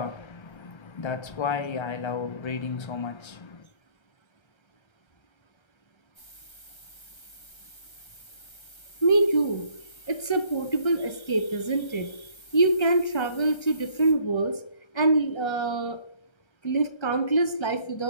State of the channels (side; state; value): right; late; 1.3 ms